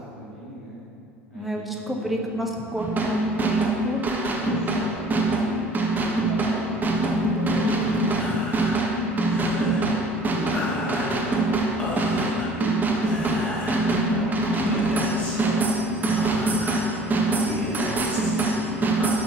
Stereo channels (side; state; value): both; normal; correlation 0.52